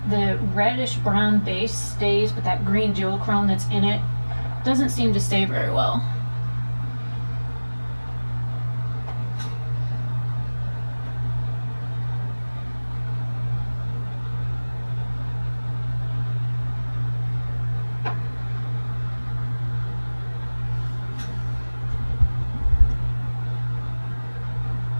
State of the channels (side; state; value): both; inverted; correlation -1.00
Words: The reddish brown base stays, but that green duochrome that's in it doesn't seem to stay very well.